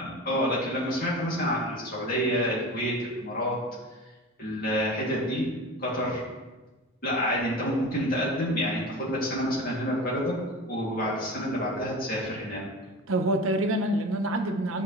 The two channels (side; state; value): both; normal; correlation 0.32